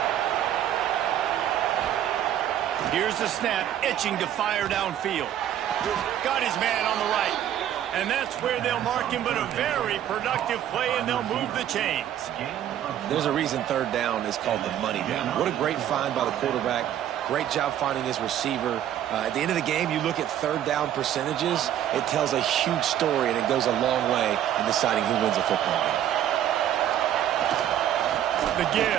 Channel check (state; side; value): quieter; left; 11.0 dB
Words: Here's the snap, itching to fire downfield. Got his man on the right. And that's where they'll mark him, but a very productive play, and they'll move the chains. There's a reason 3rd down is called the money down. What a great find by the quarterback. Great job finding his receiver. At the end of the game, you look at 3rd down percentages. It tells a huge story, and it goes a long way in deciding who wins a football game. The